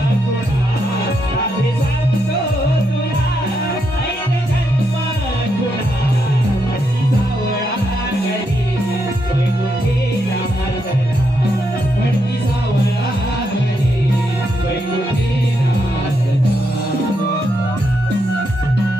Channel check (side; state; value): both; normal; correlation 0.80